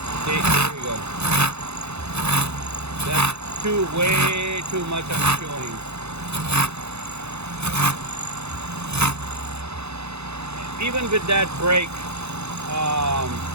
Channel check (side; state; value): left; late; 0.81 ms